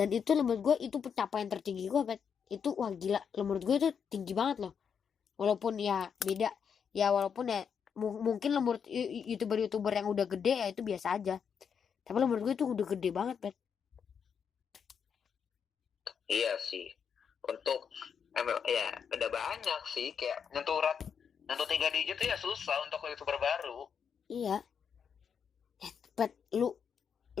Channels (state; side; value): quieter; right; 7.0 dB